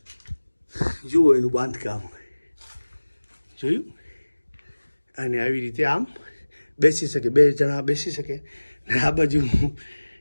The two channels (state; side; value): inverted; both; correlation -1.00